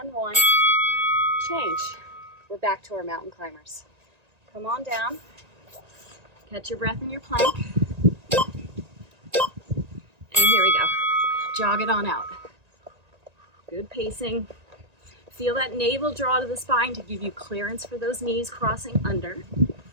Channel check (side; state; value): left; late; 1.9 ms